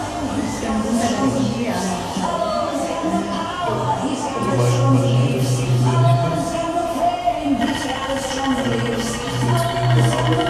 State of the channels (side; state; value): both; identical; correlation 1.00